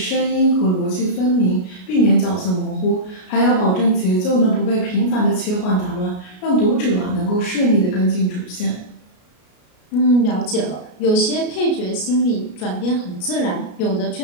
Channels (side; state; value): right; late; 33 ms